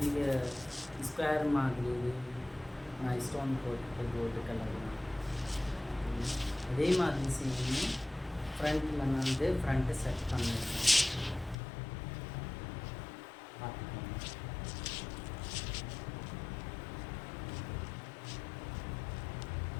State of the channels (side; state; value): right; drops out; at 11.6 s